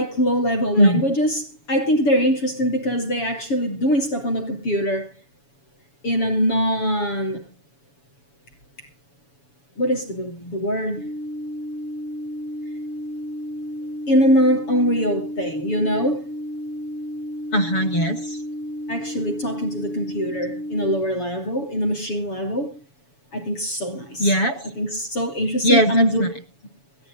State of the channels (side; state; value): right; late; 7.1 ms